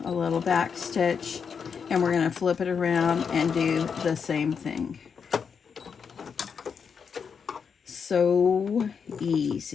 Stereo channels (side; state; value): right; quieter; 6.4 dB